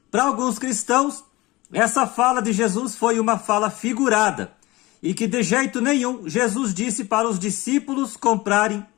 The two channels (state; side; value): quieter; right; 20.7 dB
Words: Para alguns cristãos, essa fala de Jesus foi uma fala figurada e que de jeito nenhum Jesus disse para os discípulos comprarem